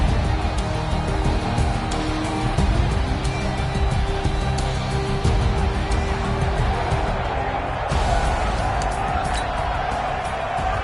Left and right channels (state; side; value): identical; both; correlation 1.00